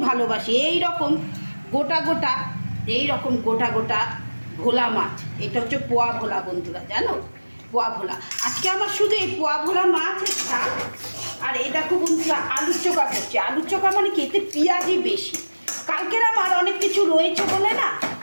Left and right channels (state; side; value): inverted; both; correlation -1.00